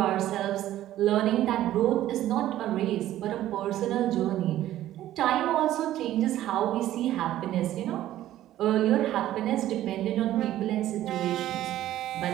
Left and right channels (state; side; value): quieter; left; 13.5 dB